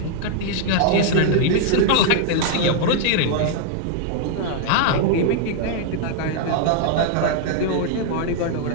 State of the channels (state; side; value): different; both; correlation 0.00